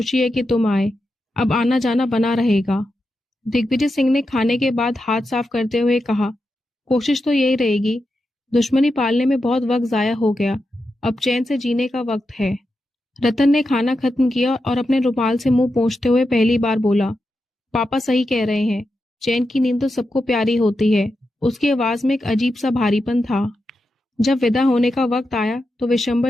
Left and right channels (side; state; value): both; normal; correlation 0.88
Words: है कि तुम आए। अब आना जाना बना रहेगा। दिग्विजय सिंह ने खाने के बाद हाथ साफ करते हुए कहा, कोशिश तो यही रहेगी। दुश्मनी पालने में बहुत वक्त जाया हो गया, अब चैन से जीने का वक्त है। रतन ने खाना खत्म किया और अपने रुमाल से मुंह पोंछते हुए पहली बार बोला, पापा सही कह रहे हैं, चैन की नींद तो सबको प्यारी होती है। उसकी आवाज में एक अजीब सा भारीपन था। जब विदा होने का वक्त आया तो